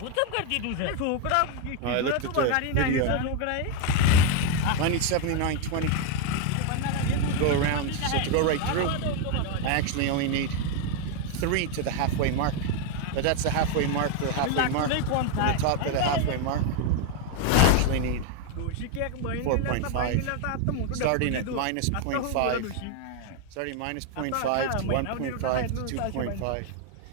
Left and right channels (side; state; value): both; different; correlation 0.01